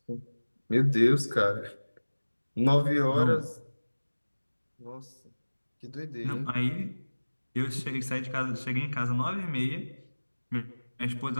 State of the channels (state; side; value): inverted; both; correlation -1.00